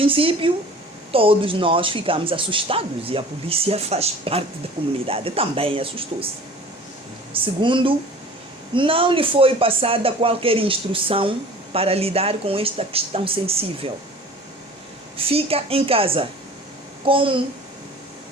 todos nós ficamos assustados e a polícia faz parte da comunidade, também assustou-se. Segundo, não lhe foi passada qualquer instrução para lidar com esta questão sensível. Fica em casa. Como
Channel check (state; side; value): normal; both; correlation 0.44